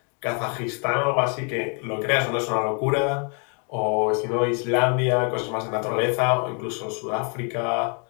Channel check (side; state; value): right; quieter; 38.2 dB